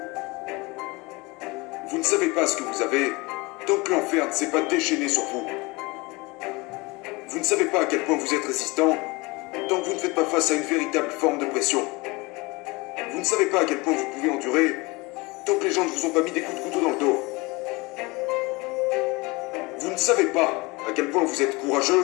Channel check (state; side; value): quieter; right; 24.8 dB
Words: Vous ne savez pas ce que vous avez tant que l'enfer ne s'est pas déchaîné sur vous. Vous ne savez pas à quel point vous êtes résistant tant que vous ne faites pas face à une véritable forme de pression. Vous ne savez pas à quel point vous pouvez endurer tant que les gens ne vous ont pas mis des coups de couteau dans le dos. Vous ne savez pas à quel point vous êtes